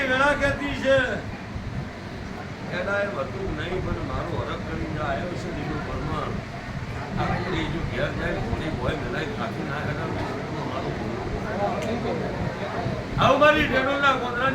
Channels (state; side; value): identical; both; correlation 1.00